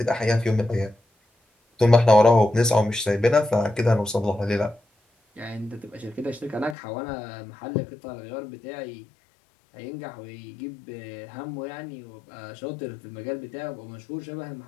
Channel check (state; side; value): drops out; right; at 6.8 s